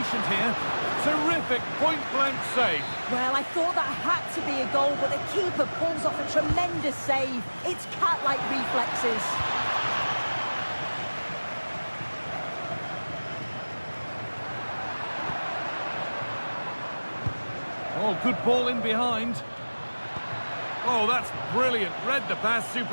here. Terrific point-blank save. Well, I thought that had to be a goal, but the keeper pulls off a tremendous save. It's cat-like reflexes. Oh, good ball in behind. Oh, that's brilliant. Read the pass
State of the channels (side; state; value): both; inverted; correlation -1.00